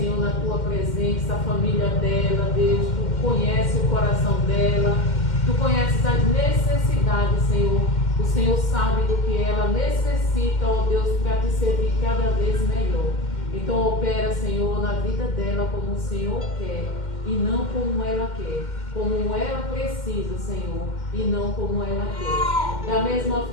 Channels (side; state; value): right; late; 2.1 ms